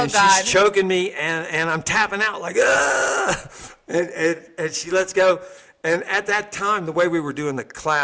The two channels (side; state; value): both; identical; correlation 1.00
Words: she's choking me, and I'm tapping out and she lets go. And at that time, the way we were doing the